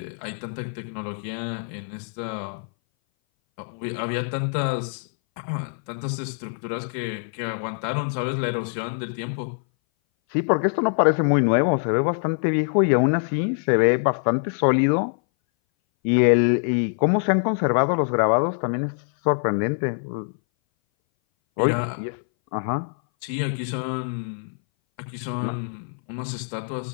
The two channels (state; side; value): silent; right; 59 dB below the other